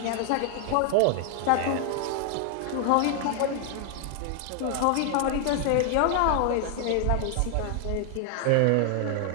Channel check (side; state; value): both; different; correlation 0.00